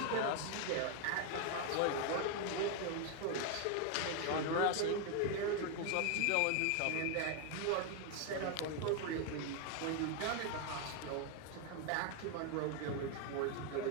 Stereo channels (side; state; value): both; different; correlation 0.01